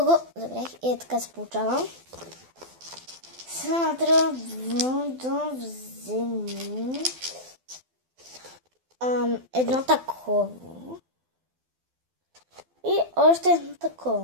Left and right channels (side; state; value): left; late; 12 ms